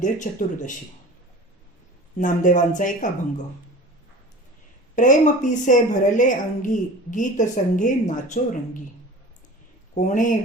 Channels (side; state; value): both; normal; correlation 0.38